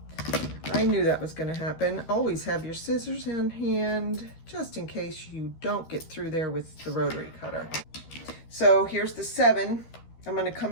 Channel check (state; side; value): late; right; 13 ms